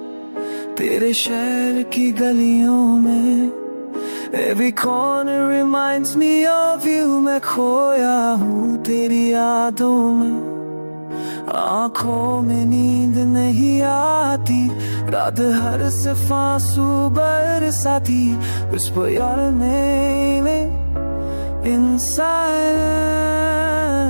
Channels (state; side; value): inverted; both; correlation -1.00